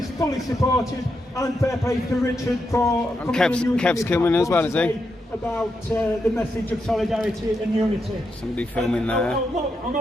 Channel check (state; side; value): normal; both; correlation 0.83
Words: fully supported, and fair play to Richard for coming and using Kev's coming as well, is he? About the message of solidarity and unity. Somebody filming there. I'll